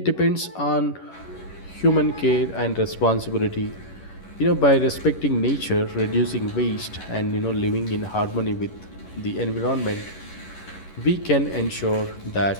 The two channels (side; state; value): right; late; 11 ms